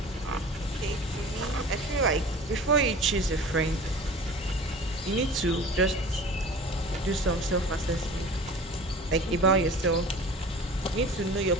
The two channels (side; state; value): both; normal; correlation 0.40